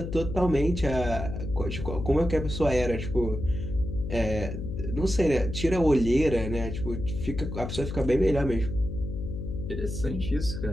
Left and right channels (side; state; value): left; noise; hum, 6 dB below the sound